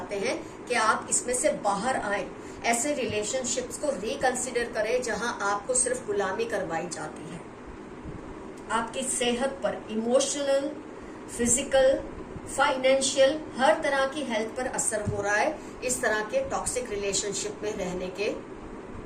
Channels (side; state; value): both; identical; correlation 1.00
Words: हैं कि आप इसमें से बाहर आए, ऐसे रिलेशनशिप्स को रिकंसिडर करें जहां आपको सिर्फ गुलामी करवाई जाती है। आपकी सेहत पर, इमोशनल, फिजिकल, फाइनेंशियल, हर तरह की हेल्थ पर असर हो रहा है इस तरह के टॉक्सिक रिलेशनशिप में रहने के